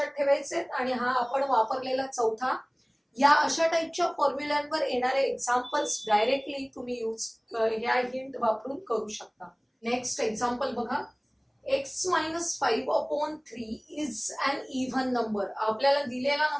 ठेवायचे आणि हा आपण वापरलेला चौथा. या अशा टाईपच्या फॉर्म्युल्यांवर येणारे एक्झाम्पल्स डायरेक्टली तुम्ही ह्या हिंट वापरून करू शकता. नेक्स्ट एक्झाम्पल बघा, x minus 5 upon 3 is an even number. आपल्याला दिलेला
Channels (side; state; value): both; identical; correlation 1.00